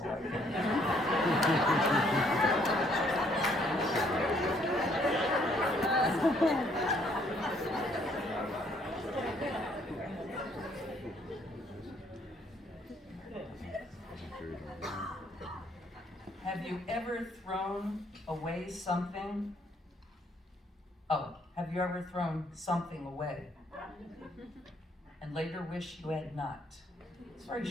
I can. Have you ever thrown away something? Oh, have you ever thrown something away and later wished you had not? It's very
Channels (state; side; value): normal; both; correlation 0.66